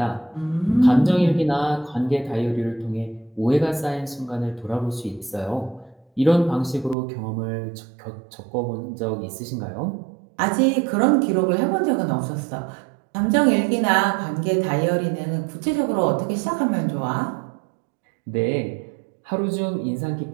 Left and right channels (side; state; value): left; drops out; at 7.0 s